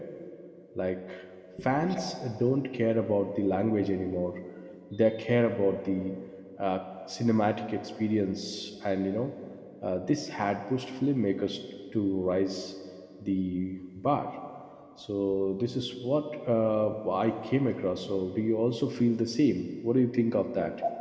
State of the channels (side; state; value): both; identical; correlation 1.00